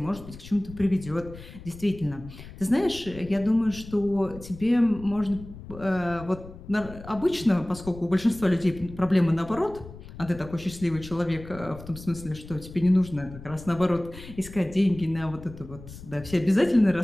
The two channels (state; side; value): noise; left; rumble, 15 dB below the sound